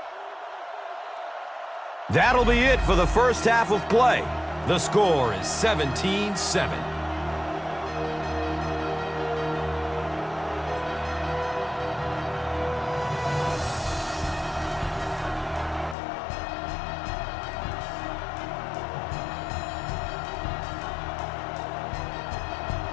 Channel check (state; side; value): drops out; right; at 16.0 s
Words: That'll be it for the first half of play. The score is 17-7.